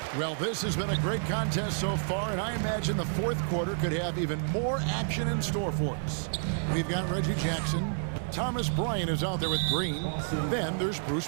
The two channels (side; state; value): left; silent; digital silence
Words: Well, this has been a great contest so far, and I imagine the fourth quarter could have even more action in store for us. We've got Reggie Jackson. Thomas Bryant is out there with Green. Then there's